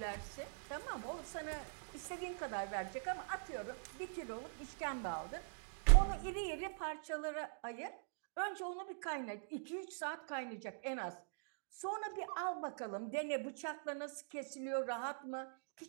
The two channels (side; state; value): left; silent; digital silence